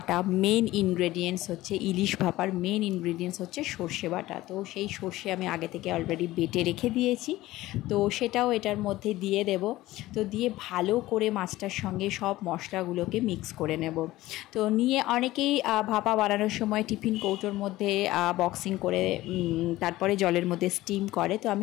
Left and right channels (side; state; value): right; quieter; 17.0 dB